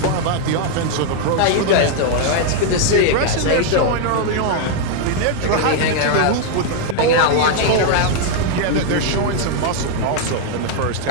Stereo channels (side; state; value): both; different; correlation 0.00